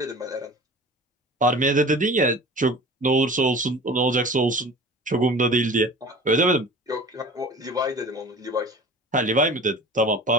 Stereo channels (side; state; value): both; normal; correlation 0.40